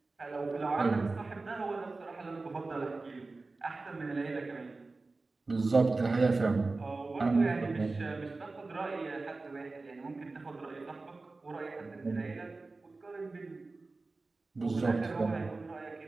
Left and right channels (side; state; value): left; quieter; 3.6 dB